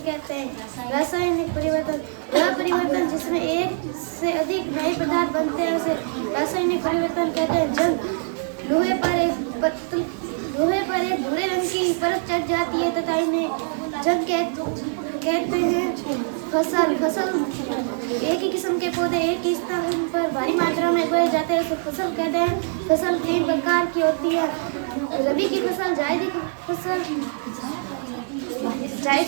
कहते हैं। रासायनिक परिवर्तन वह परिवर्तन जिसमें एक से अधिक नए पदार्थ बनते हैं उसे रासायनिक परिवर्तन कहते हैं। जंग लोहे पर एक भूरे रंग की परत चढ़ जाती है तथा इन्हें जंग कहते हैं। फसल एक ही किस्म के पौधे एक ही स्थान पर भारी मात्रा में उगाए जाते हैं उसे फसल कहते हैं। फसल 3 प्रकार की होती है, रबी की फसल, जायद की फसल,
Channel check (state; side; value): silent; left; 62 dB below the other